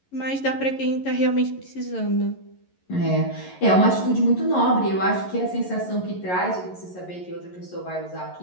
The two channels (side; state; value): right; late; 11 ms